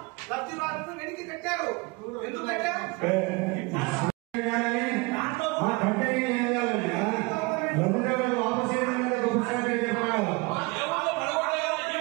లబ్ధిదారులను వెనక్కి కట్టారు. ఎందుకంటే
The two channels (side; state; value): left; quieter; 26.1 dB